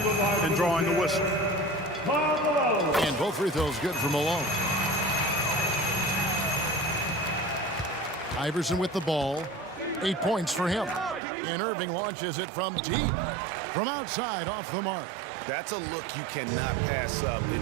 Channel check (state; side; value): drops out; left; at 11.2 s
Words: and drawing the whistle. And both free throws good for Malone. Iverson with the ball. 8 points for him. And Irving launches it from deep. From outside, off the mark. That's a look you cannot pass up.